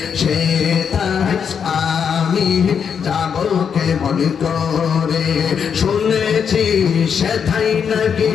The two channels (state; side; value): quieter; right; 7.1 dB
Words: সেটাই আমি যাব কেমন করে। শুনেছি সেটাই নাকি,